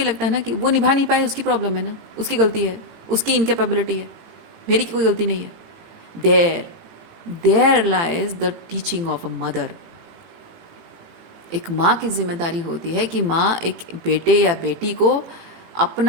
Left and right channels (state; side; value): late; left; 18 ms